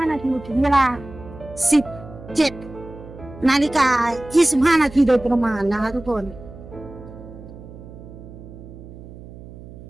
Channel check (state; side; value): noise; right; hum, 16 dB below the sound